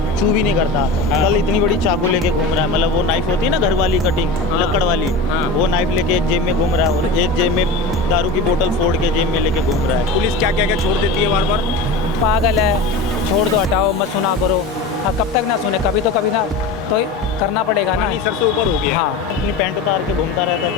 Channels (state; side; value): quieter; right; 3.1 dB